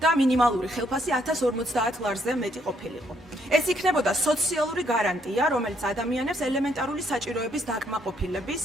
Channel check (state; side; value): normal; both; correlation 0.71